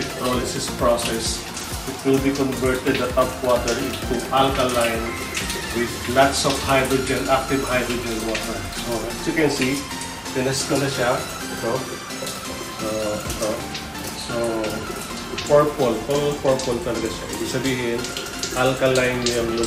process. It will be converted, the top water, into alkaline with lots of hydrogen, active hydrogen water. So, as you can see, tinest ko na siya. Ito. Ito. So, purple. Full purple talaga siya. Ibig sabihin, alkaline yung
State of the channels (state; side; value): identical; both; correlation 1.00